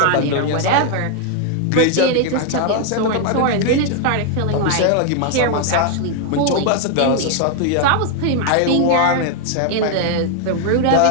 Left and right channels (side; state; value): both; different; correlation 0.00